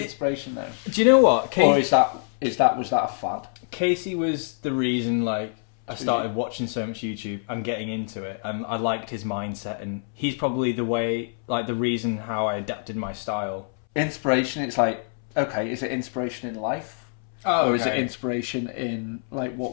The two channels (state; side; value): silent; right; 61 dB below the other